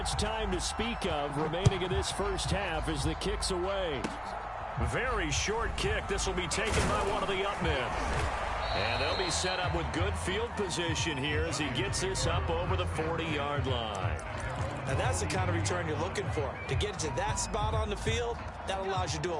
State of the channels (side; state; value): both; identical; correlation 1.00